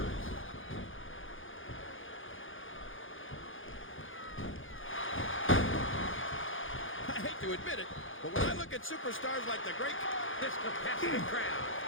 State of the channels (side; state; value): right; late; 0.58 ms